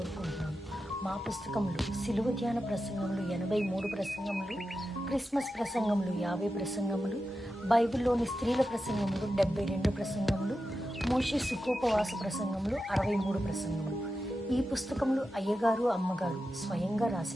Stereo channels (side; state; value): both; normal; correlation 0.91